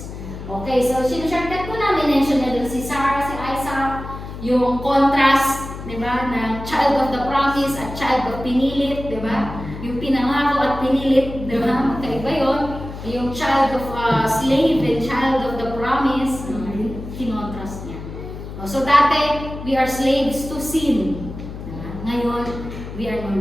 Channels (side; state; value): left; noise; hum, 10 dB below the sound